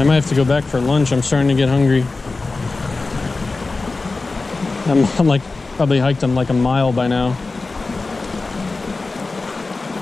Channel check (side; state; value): right; quieter; 3.6 dB